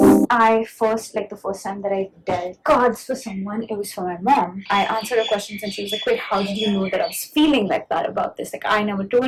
first time that I dealt cards for someone, it was for my mom. I answered her questions and she was like, wait, how did you know that I was feeling like that about this? Like, I never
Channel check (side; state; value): both; identical; correlation 1.00